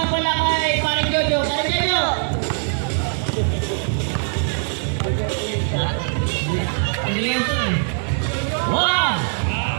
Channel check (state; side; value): silent; left; 63 dB below the other